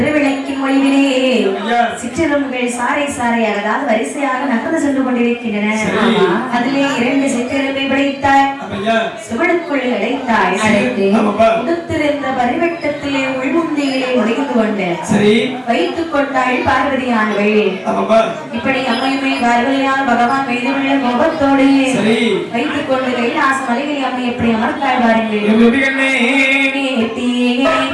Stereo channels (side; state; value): both; identical; correlation 1.00